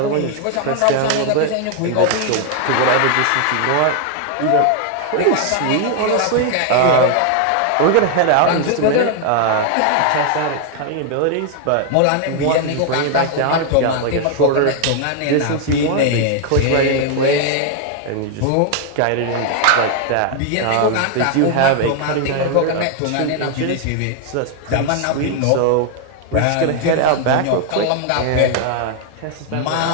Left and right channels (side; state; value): both; different; correlation 0.00